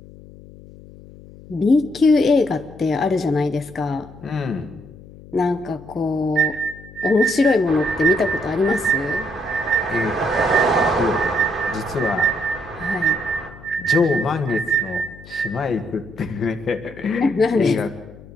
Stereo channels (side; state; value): left; noise; hum, 19 dB below the sound